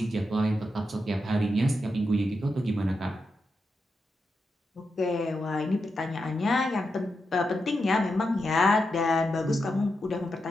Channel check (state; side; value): normal; both; correlation 0.86